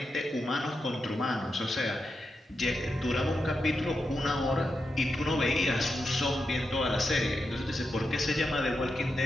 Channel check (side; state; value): both; normal; correlation 0.87